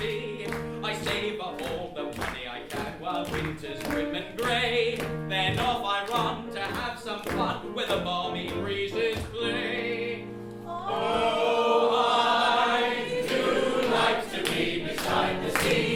I save up all the money I can while winter's grim and grey. Then off I run to have some fun with the balmy breezes play. Oh, I do like to be beside the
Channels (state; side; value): identical; both; correlation 1.00